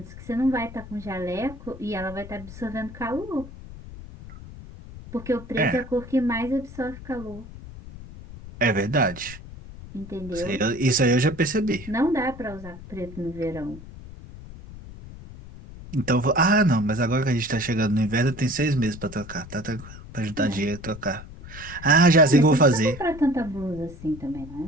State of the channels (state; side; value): noise; left; rumble, 15 dB below the sound